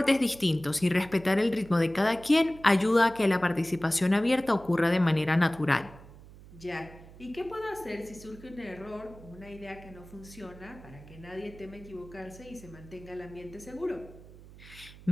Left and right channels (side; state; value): right; noise; hum, 19 dB below the sound